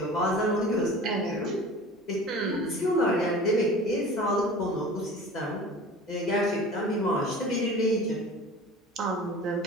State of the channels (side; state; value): both; normal; correlation 0.40